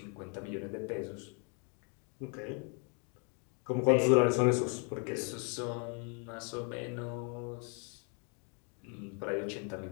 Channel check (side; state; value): right; quieter; 38.5 dB